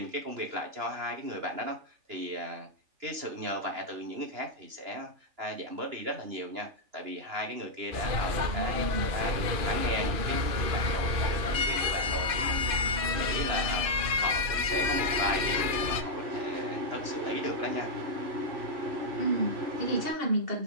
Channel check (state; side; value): late; left; 2.5 ms